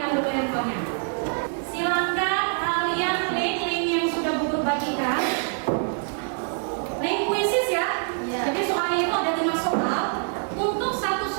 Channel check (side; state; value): left; silent; 56 dB below the other